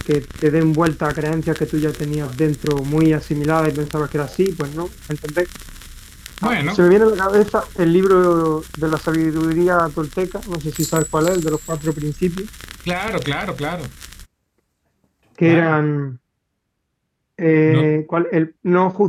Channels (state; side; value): identical; both; correlation 1.00